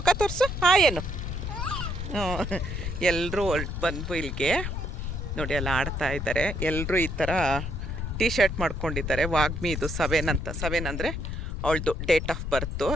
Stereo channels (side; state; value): left; noise; rumble, 4 dB below the sound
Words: ತೋರಿಸು ಏನು ಎಲ್ಲರೂ ಬಂದು ಇಲ್ಲಿಗೆ ನೋಡಿ ಅಲ್ಲಿ ಆಡ್ತಾ ಇದ್ದಾರೆ. ಎಲ್ಲರೂ ಈ ಥರ ಟೀ ಶರ್ಟ್ ಮಾಡ್ಕೊಂಡಿದ್ದಾರೆ. ವಾಗ್ಮಿ ಇದು 7 ಅಂದರೆ ಅವಳದು ಡೇಟ್ ಆಫ್ ಬರ್ತು.